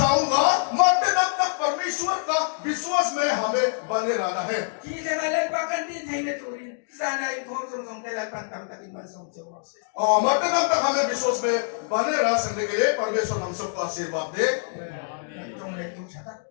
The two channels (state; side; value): silent; right; digital silence